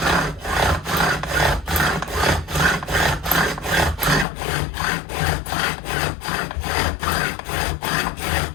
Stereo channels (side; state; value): right; drops out; at 4.2 s